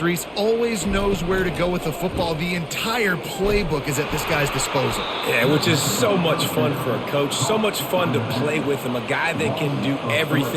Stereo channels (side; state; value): both; identical; correlation 1.00